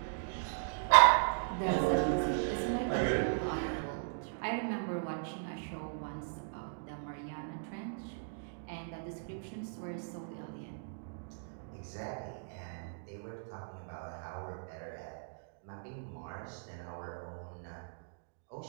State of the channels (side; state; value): left; silent; digital silence